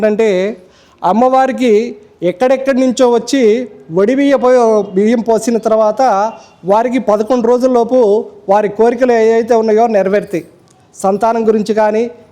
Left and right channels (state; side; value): identical; both; correlation 1.00